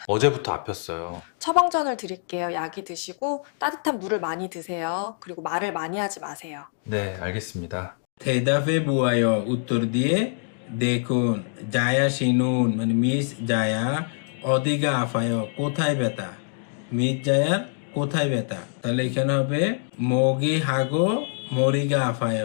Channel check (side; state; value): right; silent; 62 dB below the other